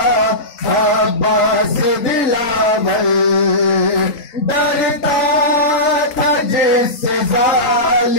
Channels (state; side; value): late; right; 3.9 ms